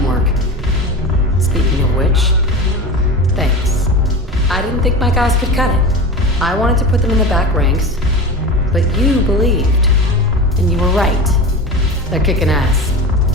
Speaking of which, thanks. I didn't think my guys could cut it. I wanted to put them in the back ranks, but you believed. And you were right. They're kicking ass.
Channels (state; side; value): normal; both; correlation 0.28